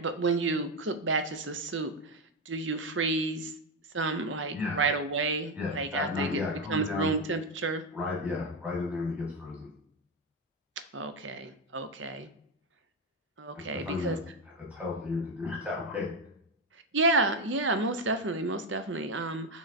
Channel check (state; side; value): normal; both; correlation 0.09